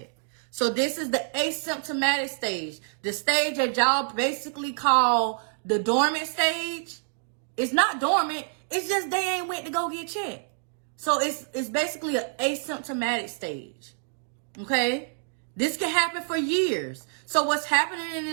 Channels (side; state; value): left; silent; digital silence